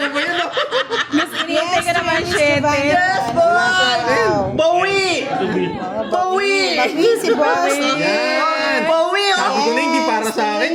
ba yun? oh? Mas inintay ka naman, Miss shit. Giovanni. Yes, boy! Bawi! Bawi! Bawi si boss. Yan! Bawi! Sabi ko na hindi para sa akin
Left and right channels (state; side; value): identical; both; correlation 1.00